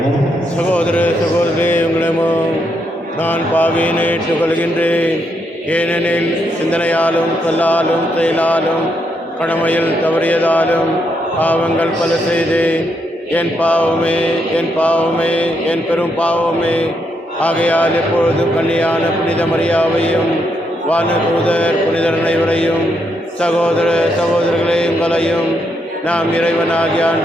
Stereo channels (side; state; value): both; normal; correlation 0.78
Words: சகோதர சகோதரி, உங்களிடமும் நான் பாவியினை ஏற்றுக்கொள்கின்றேன். ஏனெனில் சிந்தனையாலும் சொல்லாலும் செயலாலும் கடமையில் தவறியதாலும் பாவங்கள் பல செய்தேன். என் பாவமே, என் பாவமே, என் பெரும் பாவமே. ஆகையால் எப்பொழுதும் கன்னியான புனித மரியாவையும் வானதூதர் புனிதர் அனைவரையும் சகோதர சகோதரர்களே உங்களையும் நாம் இறைவனாகிய